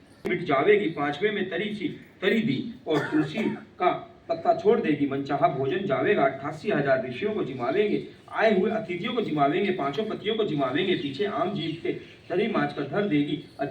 मिट जावेगी, 5वें में तरी दी और तुलसी का पत्ता छोड़ देगी। मनचाहा भोजन जावेगा, 88,000 ऋषियों को जिमावेंगे, आए हुए अतिथियों को जिमावेंगे, 5 पतियों को जिमावेंगे। पीछे आम जीव के तरी माच कर धर देगी।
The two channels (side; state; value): both; identical; correlation 1.00